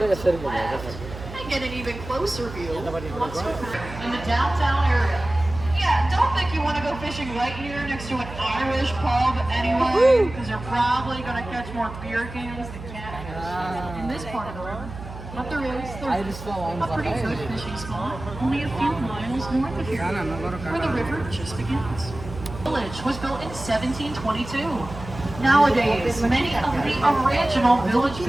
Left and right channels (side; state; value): right; noise; hum, 12 dB below the sound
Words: and get an even closer view once we're back in the downtown area. Yeah, don't think you want to go fishing right here next to an Irish pub anyway, because you're probably going to catch more beer cans than catfish in this part of the river. But there's a pretty good fishing spot only a few miles north of here, where the river just begins. The village was built in 1722. Nowadays, many of the original village